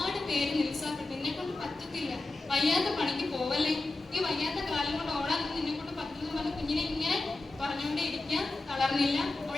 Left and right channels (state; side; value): quieter; right; 3.1 dB